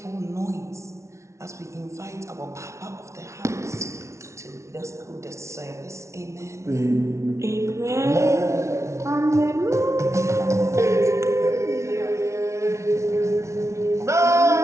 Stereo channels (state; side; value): late; left; 0.14 ms